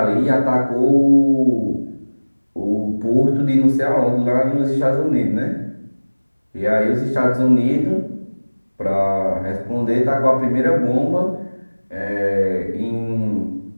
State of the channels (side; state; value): both; inverted; correlation -1.00